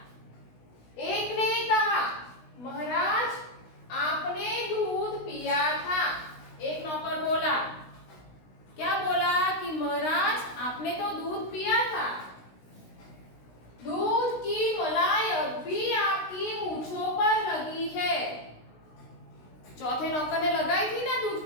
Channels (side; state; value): right; late; 16 ms